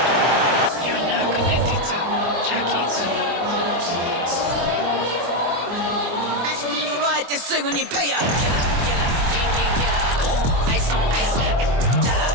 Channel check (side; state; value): left; late; 24 ms